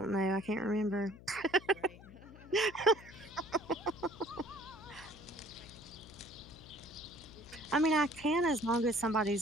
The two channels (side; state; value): left; noise; hum, 18 dB below the sound